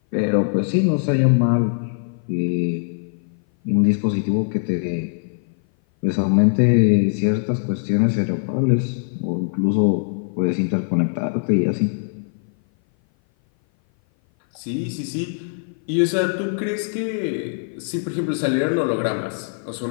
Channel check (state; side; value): silent; right; 57 dB below the other